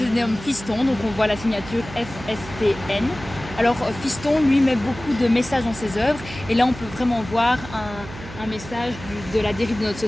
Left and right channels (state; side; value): noise; right; hum, 14 dB below the sound